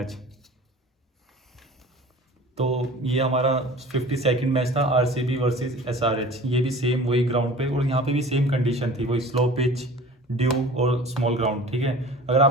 तो ये हमारा 52nd मैच था RCB वर्सेस SRH। ये भी सेम वही ग्राउंड पे, और यहाँ पे भी सेम कंडीशन थी, वही स्लो पिच, ड्यू और स्मॉल ग्राउंड, ठीक है। अगर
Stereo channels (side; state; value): both; normal; correlation 0.42